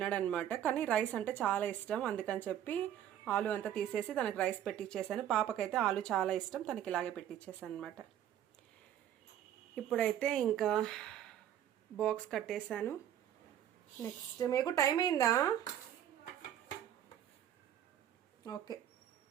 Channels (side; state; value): left; quieter; 10.7 dB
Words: కానీ రైస్ అంటే చాలా ఇష్టం. అందుకని చెప్పి ఆలు అంతా తీసేసి తనకి రైస్ పెట్టించేసాను. పాపకైతే ఆలు చాలా ఇష్టం, తనకి ఇలాగే పెట్టించేసాను అనమాట. ఇప్పుడైతే ఇంకా బాక్స్ కట్టేశాను. నెక్స్ట్ మీకు టైం అయిందా? ఓకే,